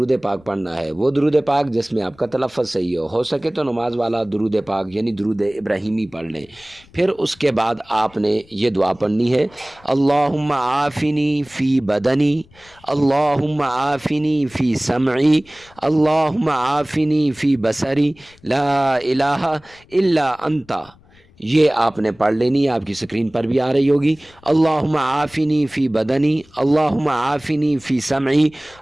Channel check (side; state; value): left; noise; rumble, 28 dB below the sound